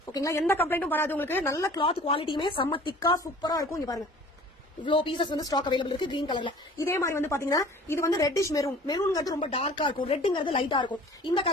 ஓகேங்களா, எந்த கம்ப்ளைண்ட்டும் வராது உங்களுக்கு. நல்ல கிளாத் குவாலிட்டியுமே செம்ம திக்கா சூப்பரா இருக்கும். இங்க பாருங்க இவ்ளோ பீசஸ் வந்து ஸ்டாக் அவைலபிள் இருக்கு கிரீன் கலர்ல. இதே மாதிரி வந்து பாத்தீங்கன்னா இது வந்து ரெட்டிஷ் மெரூன். மெரூன்ங்கிறது ரொம்ப டார்க்கா இருக்கும், ரெட்ங்கிறது லைட்டா இருக்கும். இந்த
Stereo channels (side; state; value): both; normal; correlation 0.47